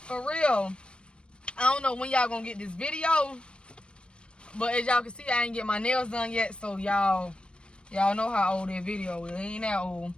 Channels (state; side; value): late; right; 0.055 ms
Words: For real. I don't know when y'all gonna get this video, but as y'all can see, I ain't get my nails done yet, so y'all know how old that video is. It ain't that old.